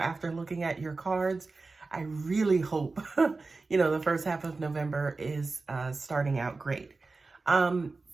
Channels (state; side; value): quieter; left; 3.8 dB